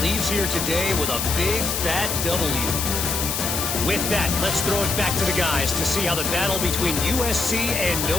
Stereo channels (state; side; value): noise; left; hiss, 2 dB below the sound